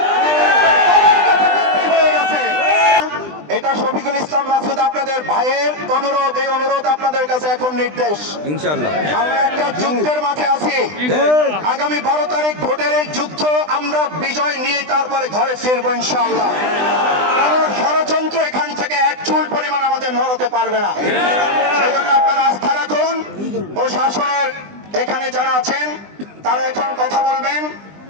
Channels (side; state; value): left; late; 20 ms